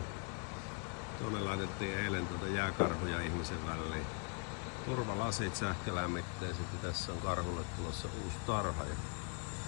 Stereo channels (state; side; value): quieter; right; 36.7 dB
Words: Tuonne laitettiin eilen jääkarhuja ihmisen väliin. Turvalasit sähkölämmitteiset ja tässä on karhulle tulossa uusi tarha.